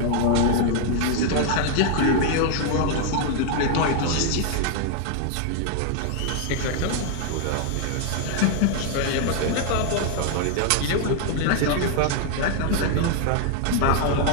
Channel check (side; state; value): both; different; correlation 0.00